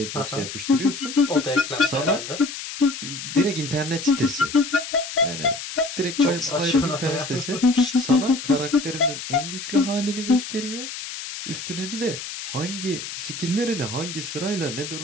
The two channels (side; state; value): left; noise; hiss, 8 dB below the sound